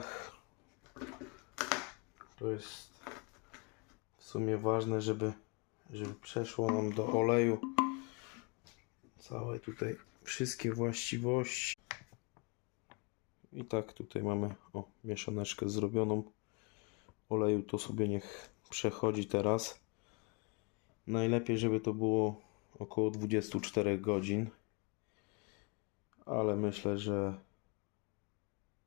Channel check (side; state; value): right; quieter; 31.5 dB